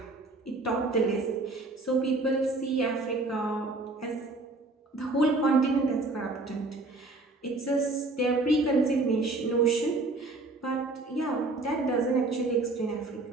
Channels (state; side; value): quieter; left; 3.1 dB